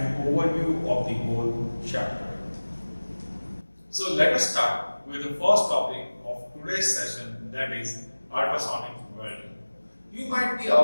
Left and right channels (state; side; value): inverted; both; correlation -1.00